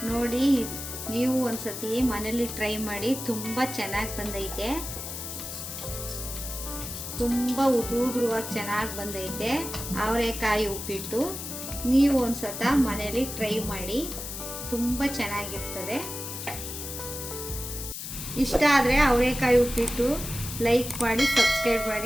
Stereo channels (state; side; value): noise; left; hiss, 7 dB below the sound